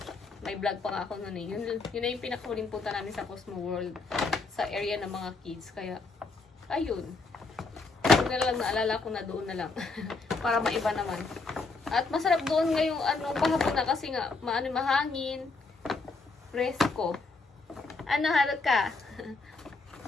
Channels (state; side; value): quieter; right; 3.9 dB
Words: May vlog pa nga ako nun eh. Yun na yung pinakahuling punta namin sa Cosmo World. Sa area ng mga kids. Kaya, ayun. Huwag na lang naalala ko na doon na lang. Para maiba naman. At masarap doon ngayong pahapon na kasi nga, mahangin. Presko. Ano, Haruka?